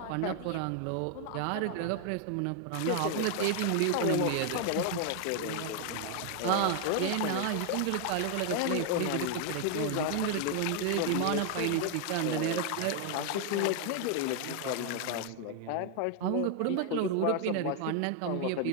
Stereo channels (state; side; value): different; both; correlation 0.00